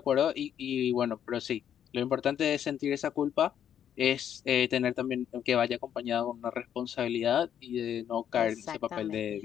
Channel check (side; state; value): right; quieter; 9.5 dB